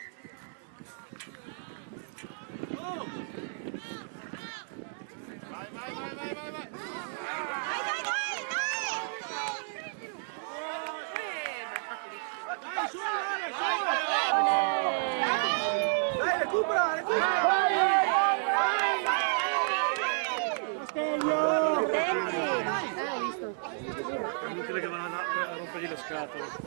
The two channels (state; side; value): silent; left; digital silence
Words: Vai, vai, vai, vai, vai, vai. Dai, su, dai, recupera, recupera. È inutile che vanno a rompergli le scatole.